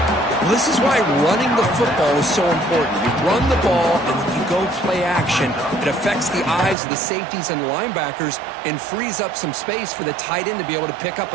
Well, this is why running the football is so important. You run the ball and then you go play action. It affects the eyes of the safeties and linebackers and frees up some space for the tight end to be able to pick up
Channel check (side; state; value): left; drops out; at 6.8 s